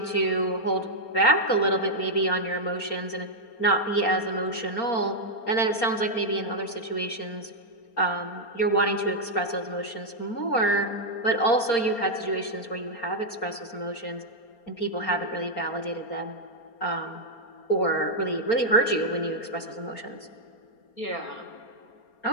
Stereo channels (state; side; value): late; right; 4.3 ms